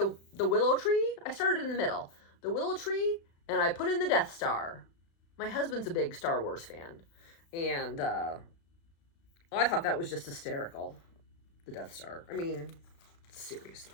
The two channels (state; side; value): late; right; 36 ms